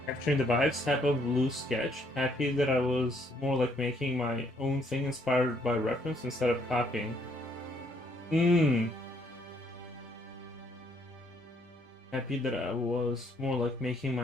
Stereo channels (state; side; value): normal; both; correlation 0.68